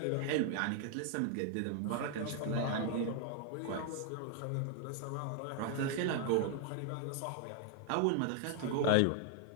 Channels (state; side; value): different; both; correlation 0.00